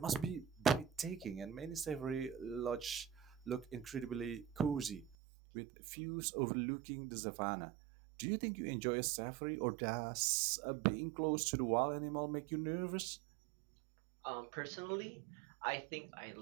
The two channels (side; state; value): left; drops out; at 5.2 s